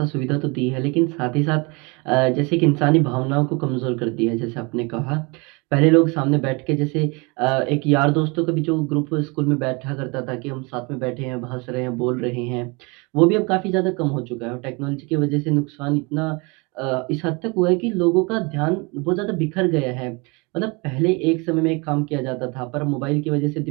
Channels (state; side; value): quieter; left; 28.8 dB